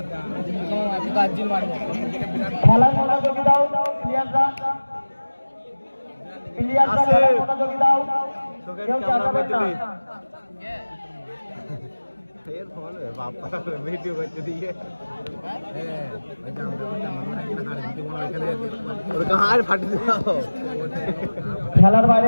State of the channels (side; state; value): both; inverted; correlation -1.00